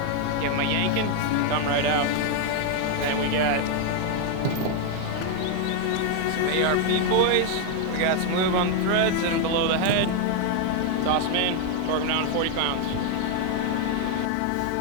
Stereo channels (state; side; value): different; both; correlation 0.01